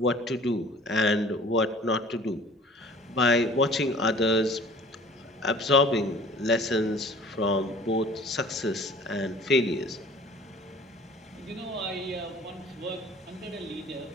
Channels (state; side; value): normal; both; correlation 0.48